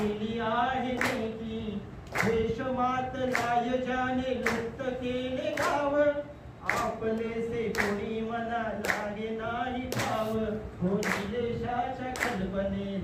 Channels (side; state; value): both; identical; correlation 1.00